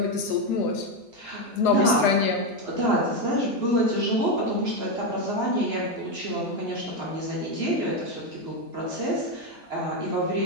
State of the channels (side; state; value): both; normal; correlation 0.08